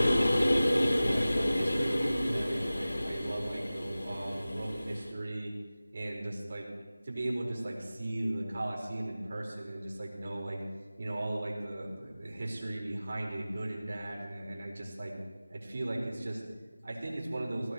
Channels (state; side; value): inverted; both; correlation -0.97